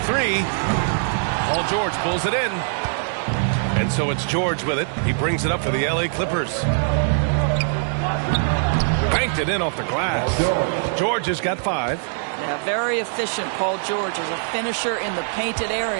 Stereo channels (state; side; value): silent; left; digital silence